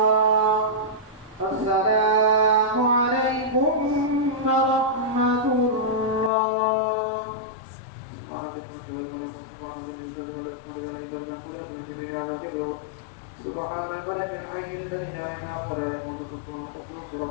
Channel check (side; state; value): right; drops out; at 6.3 s